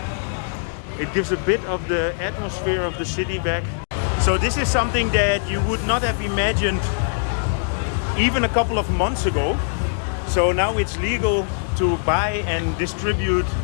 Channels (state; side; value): silent; right; digital silence